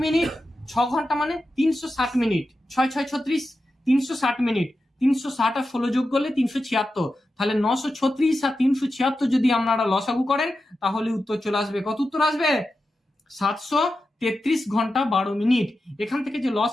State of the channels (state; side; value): normal; both; correlation 0.91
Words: মিনিট, 6 ঘন্টা মানে 360 মিনিট, 6 6 36, 360 মিনিট, 360 আর 16 যোগ করলে 376, তাহলে 936 আর 376 যদি আপনারা লসাগু করেন তাহলে উত্তর চলে আসবে। কত উত্তর আসবে? 733 ঘন্টা 12 মিনিট। এখান থেকে যে